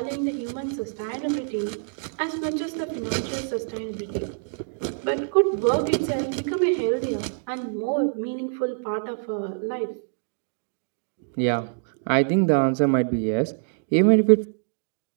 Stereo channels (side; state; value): left; silent; digital silence